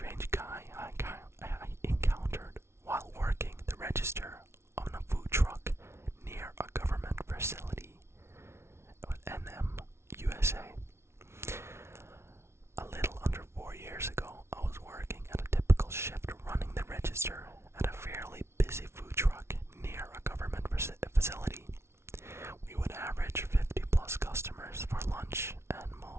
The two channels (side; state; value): left; late; 0.13 ms